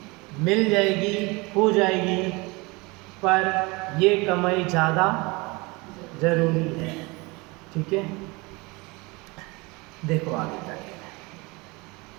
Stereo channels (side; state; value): left; quieter; 25.5 dB